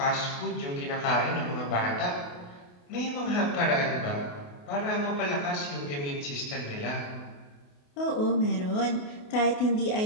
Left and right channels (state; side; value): late; right; 28 ms